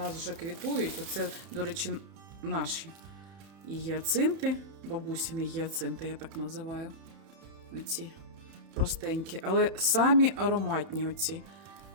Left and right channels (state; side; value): late; left; 31 ms